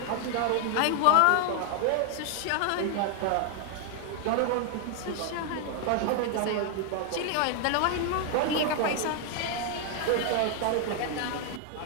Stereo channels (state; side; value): different; both; correlation 0.00